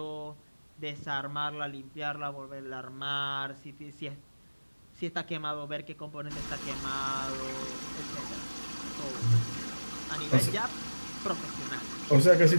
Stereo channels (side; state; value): both; inverted; correlation -1.00